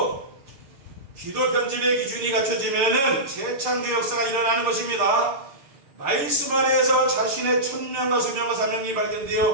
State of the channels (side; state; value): left; late; 6.8 ms